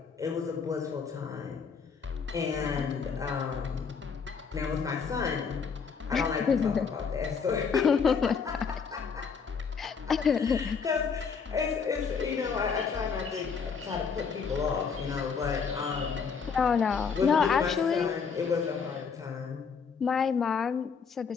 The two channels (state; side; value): quieter; right; 5.9 dB